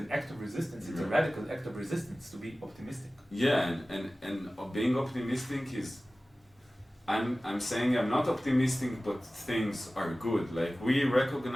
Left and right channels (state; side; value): normal; both; correlation 0.97